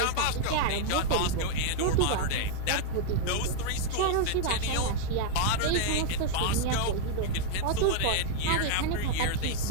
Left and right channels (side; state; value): both; different; correlation -0.01